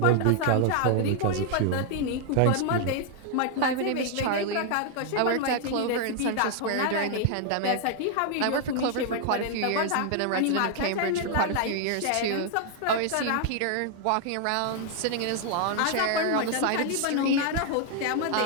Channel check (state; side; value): different; both; correlation 0.00